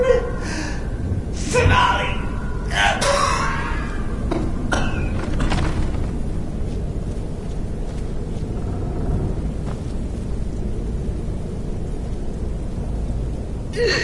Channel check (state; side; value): identical; both; correlation 1.00